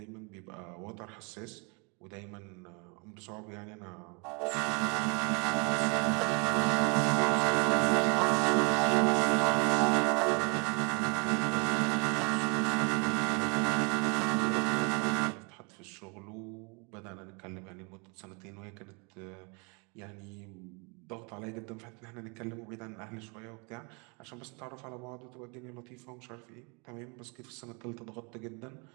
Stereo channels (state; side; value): quieter; left; 32.5 dB